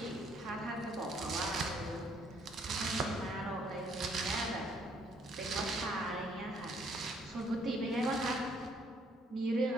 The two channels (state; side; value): normal; both; correlation 0.66